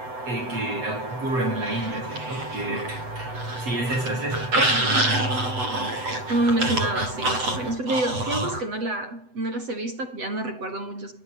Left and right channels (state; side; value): late; left; 8.0 ms